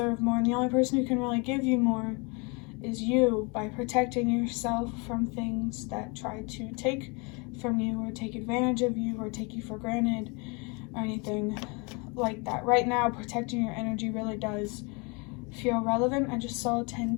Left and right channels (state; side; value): quieter; right; 30.5 dB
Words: more, and the only person who can really give you more is you, by protecting yourself from things that try to take from you or take advantage of you or take you for granted or anything like that. Right now, protecting your energy really does feel relevant. I just saw